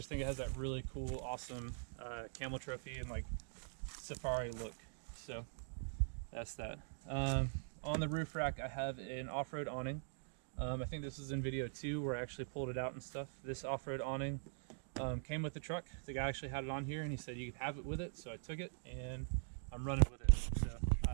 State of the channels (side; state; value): left; silent; digital silence